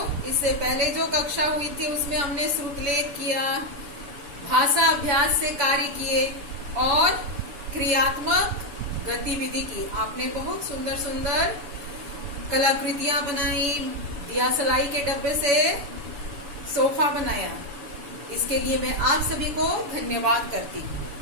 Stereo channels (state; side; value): late; left; 7.1 ms